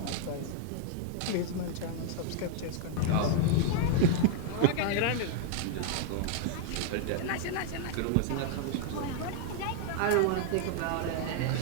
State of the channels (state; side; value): different; both; correlation 0.00